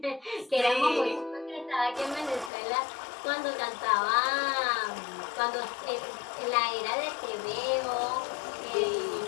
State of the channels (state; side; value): drops out; right; at 2.5 s